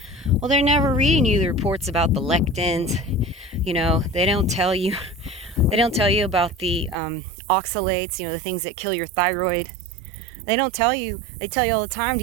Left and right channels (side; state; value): left; drops out; at 7.0 s